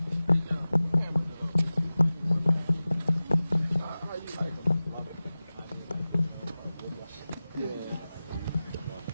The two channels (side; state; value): both; inverted; correlation -0.97